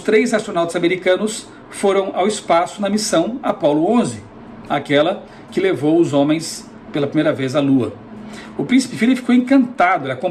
astronautas americanos foram ao espaço na missão Apollo 11, aquela que levou os homens pela primeira vez à Lua. O príncipe Philip ficou encantado, ele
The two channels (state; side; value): identical; both; correlation 1.00